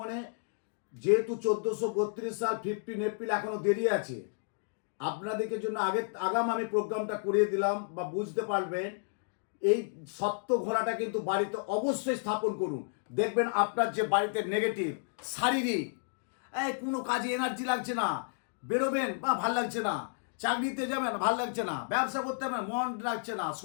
যেহেতু 1432 সাল 15 এপ্রিল এখনো দেরি আছে, আপনাদেরকে জন্য আগাম আমি প্রোগ্রামটা করিয়ে দিলাম, বা বুঝতে পারবেন। এই সত্য ঘোড়াটা কিন্তু বাড়িতে অবশ্যই স্থাপন করুন। দেখবেন আপনার যে বাড়িতে নেগেটিভ, শারীরিক, কোনো কাজে এনার্জি লাগছে না, বেরোবেন বা ভাল লাগছে না, চাকরিতে যাবেন ভাল লাগছে না, ব্যবসা করতে হবে মন লাগছে না,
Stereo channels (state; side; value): silent; right; digital silence